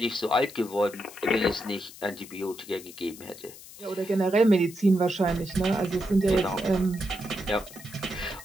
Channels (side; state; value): left; noise; hiss, 17 dB below the sound